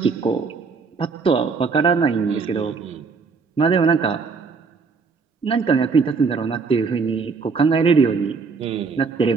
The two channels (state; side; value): quieter; left; 4.9 dB